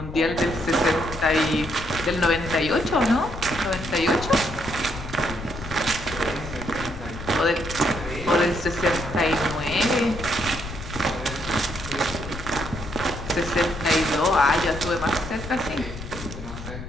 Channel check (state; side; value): noise; left; rumble, 10 dB below the sound